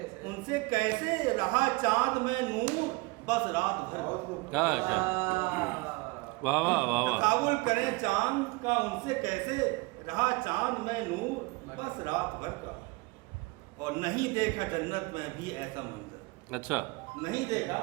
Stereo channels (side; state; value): left; quieter; 24.8 dB